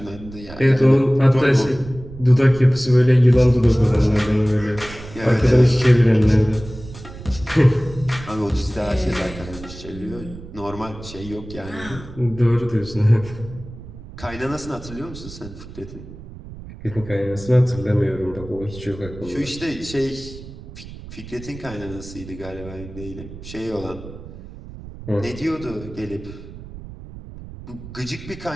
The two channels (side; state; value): right; noise; rumble, 15 dB below the sound